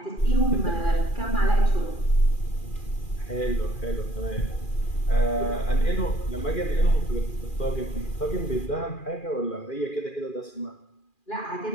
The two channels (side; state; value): right; late; 2.4 ms